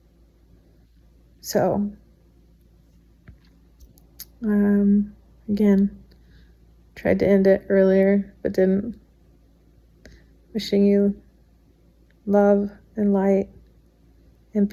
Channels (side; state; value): both; identical; correlation 1.00